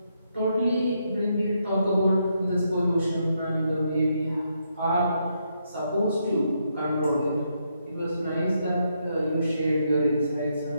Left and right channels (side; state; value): both; inverted; correlation -0.78